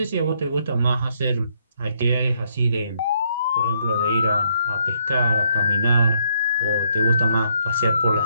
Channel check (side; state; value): both; inverted; correlation -0.72